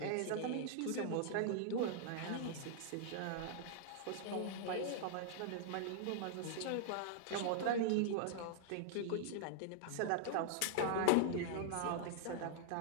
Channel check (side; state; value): both; different; correlation -0.01